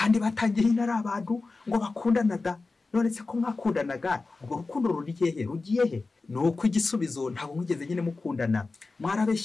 batangiye ari abantu ngo bakundana da. None se ko mwakundanaga, ubwo rukundo rugiye he? Nuko igisubizo ntabwo mwigeze nyine mukundana,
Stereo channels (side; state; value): right; quieter; 3.7 dB